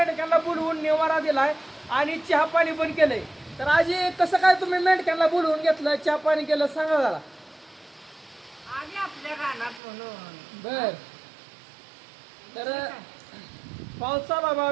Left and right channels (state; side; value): drops out; left; at 9.8 s